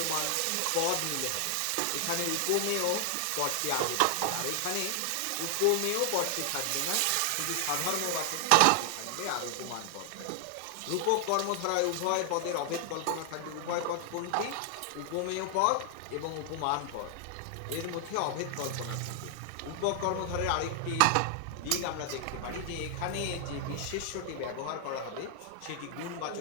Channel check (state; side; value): different; both; correlation 0.00